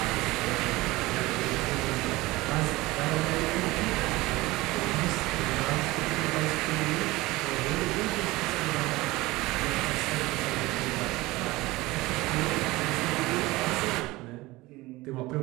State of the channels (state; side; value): quieter; left; 20.2 dB